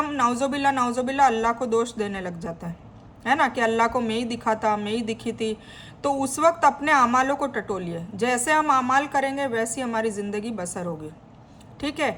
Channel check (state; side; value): identical; both; correlation 1.00